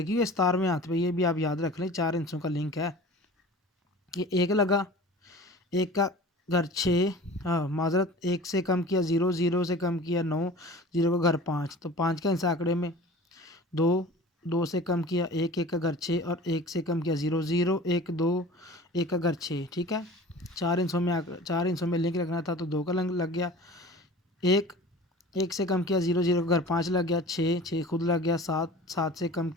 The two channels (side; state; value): both; normal; correlation 0.41